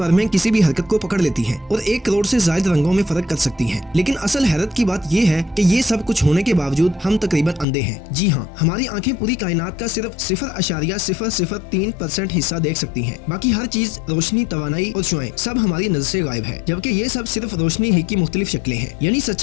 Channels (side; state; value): right; drops out; at 7.7 s